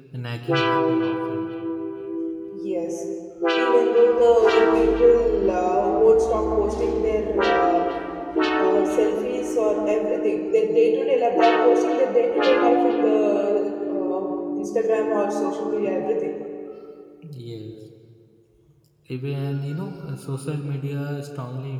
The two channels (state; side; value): identical; both; correlation 1.00